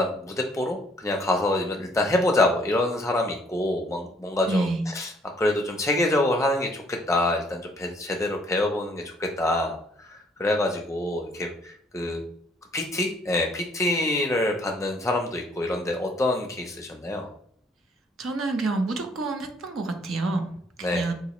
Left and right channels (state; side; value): normal; both; correlation 0.63